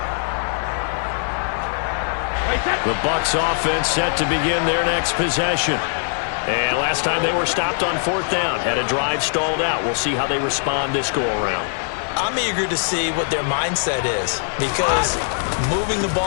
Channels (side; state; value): right; silent; digital silence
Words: The Bucs offense set to begin their next possession. And last time they were stopped on 4th down. Had a drive stalled out. We'll see how they respond this go-around. I'm eager to see what their mindset is, because moving the